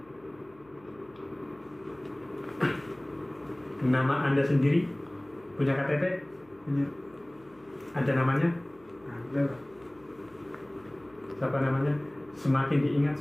Nama Anda sendiri? Punya KTP? Punya. Ada namanya? Ada lah. Siapa namanya? Semakin diingat,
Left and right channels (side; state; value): left; noise; hum, 29 dB below the sound